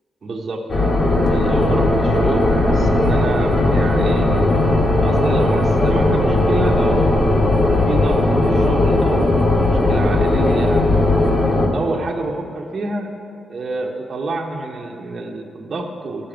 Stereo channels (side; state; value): both; normal; correlation 0.81